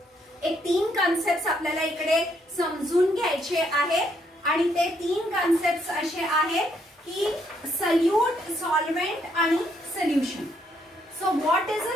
एक 3 कॉन्सेप्ट आपल्याला इकडे समजून घ्यायचे आहेत आणि ते 3 कॉन्सेप्ट असे आहेत की सल्यूट, सॉल्व्हेंट आणि solution. So what is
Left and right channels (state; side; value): normal; both; correlation 0.72